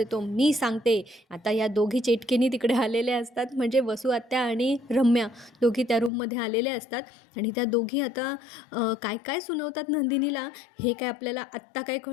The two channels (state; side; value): drops out; right; at 6.1 s